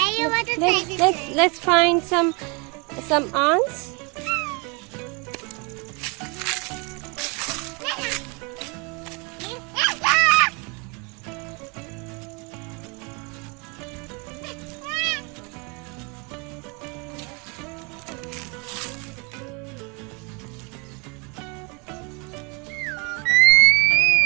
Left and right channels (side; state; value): left; quieter; 31.2 dB